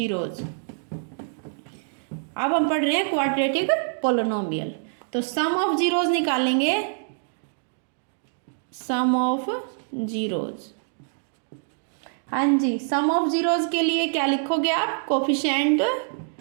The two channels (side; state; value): left; silent; digital silence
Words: अब हम पढ़ रहे हैं क्वाड्रेटिक पोलिनोमियल, तो सम ऑफ जीरोज निकालेंगे, सम ऑफ जीरोज, हाँ जी, सम ऑफ जीरोज के लिए क्या लिखोगे आप, कोफिशिएंट